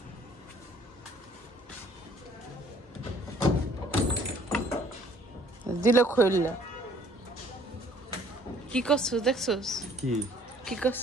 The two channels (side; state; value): both; normal; correlation 0.58